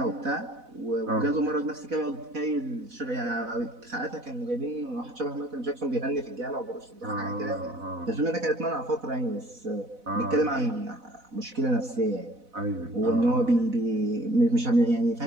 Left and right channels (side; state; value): left; late; 4.0 ms